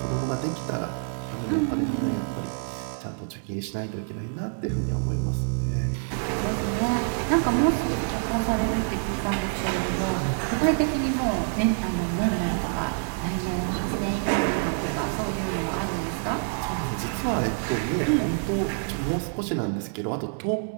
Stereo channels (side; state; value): left; silent; 59 dB below the other